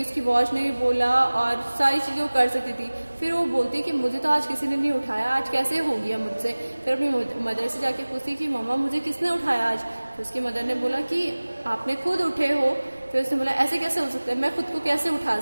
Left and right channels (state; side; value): inverted; both; correlation -1.00